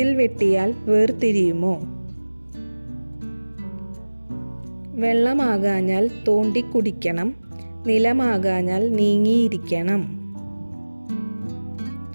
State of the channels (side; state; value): both; inverted; correlation -1.00